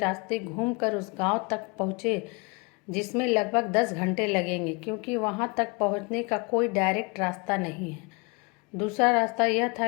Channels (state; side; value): quieter; right; 30.5 dB